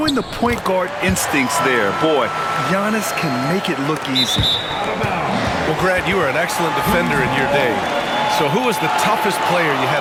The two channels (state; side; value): identical; both; correlation 1.00